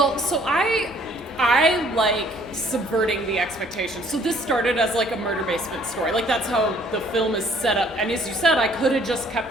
so I like subverting the expectations. So this started as like a murder basement story. Like that's how the film is set up. And as you said, I could have just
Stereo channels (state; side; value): normal; both; correlation 0.60